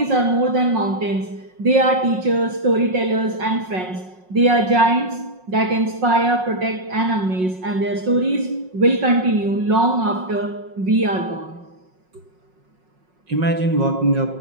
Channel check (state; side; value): late; left; 5.5 ms